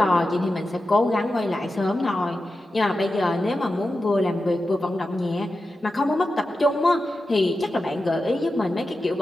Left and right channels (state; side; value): normal; both; correlation 0.92